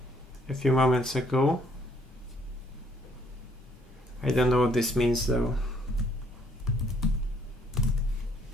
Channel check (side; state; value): both; normal; correlation 0.65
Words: a few moments ago. I don't know what this means though.